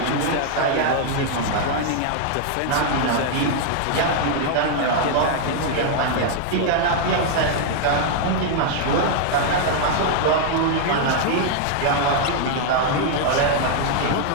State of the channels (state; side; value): different; both; correlation 0.00